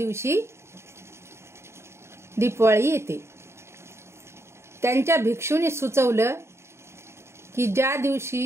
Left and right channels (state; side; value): late; left; 0.13 ms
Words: दीपावली येते। त्यांच्या भिक्षूने सुचवलं की ज्या